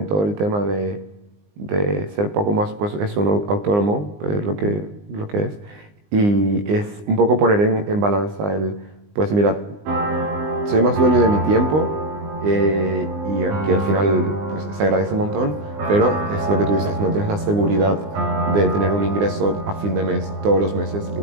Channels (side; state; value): left; late; 20 ms